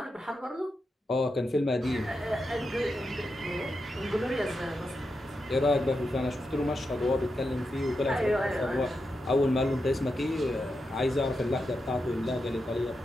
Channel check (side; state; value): both; normal; correlation 0.87